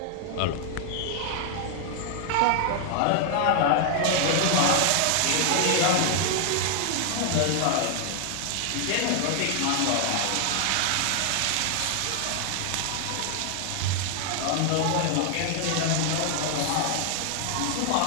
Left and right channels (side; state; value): both; different; correlation 0.00